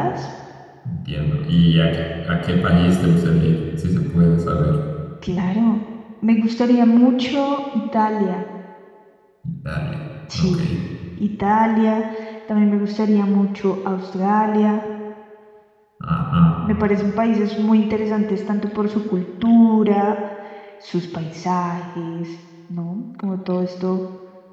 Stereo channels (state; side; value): identical; both; correlation 1.00